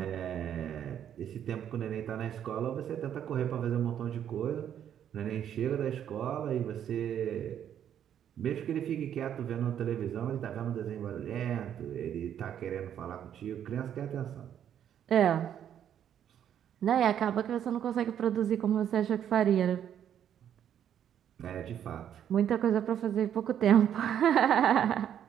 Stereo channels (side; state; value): left; quieter; 9.7 dB